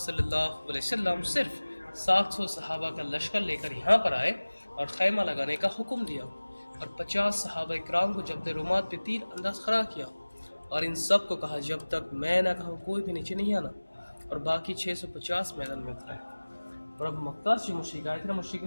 صلی اللہ علیہ وسلم صرف 700 صحابہ کا لشکر لے کر یہاں پر آئے اور خیمہ لگانے کا حکم دیا، اور 50 صحابہ کرام کو جبل رومات پہ تیر انداز کھڑا کیا، اور ان سب کو کہا جب تک میں نہ کہوں کوئی بھی نیچے نہیں آنا، اور باقی 650 میدان میں اترے۔ اور اب مکہ سے مشرک آئے تھے،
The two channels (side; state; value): both; inverted; correlation -1.00